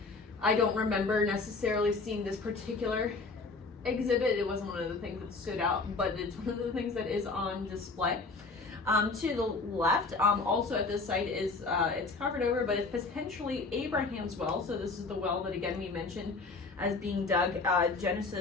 I don't remember necessarily seeing this particular exhibit. It wasn't one of the things that stood out, but it's one of the things that is on display. To the left, also at this site is, it's covered over, but it's potentially Abraham's well. So this is the well that again we mentioned as being dug,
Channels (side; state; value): right; quieter; 3.9 dB